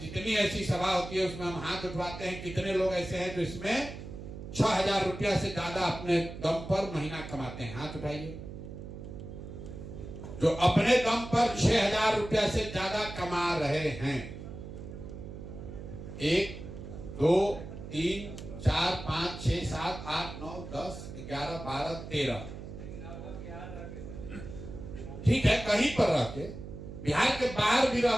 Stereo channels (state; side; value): noise; right; hum, 11 dB below the sound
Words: जितनी ऐसी सभा होती है उसमें हम हाथ उठवाते हैं। कितने लोग ऐसे हैं जो इसमें 6,000 रुपया से ज्यादा अपने दम पर महीना कमाते हैं? हाथ उठाइए। जो अपने दम पर 6,000 रुपया से ज्यादा कमा रहे हैं, 1 2 3 4 5 6 7 8 9 10 11 12 13, ठीक है, कहीं पर रह के, बिहार के बाहर भी रह